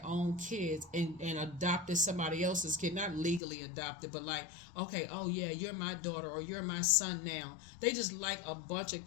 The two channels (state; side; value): drops out; right; at 3.4 s